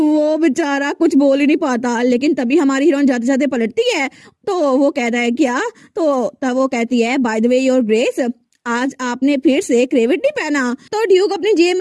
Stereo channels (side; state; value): both; identical; correlation 1.00